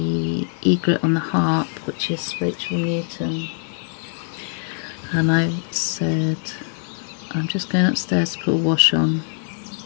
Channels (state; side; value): silent; right; 64 dB below the other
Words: egret on the harp, which is Rachel Newton, and I said I'm just going upstairs to put a wash on.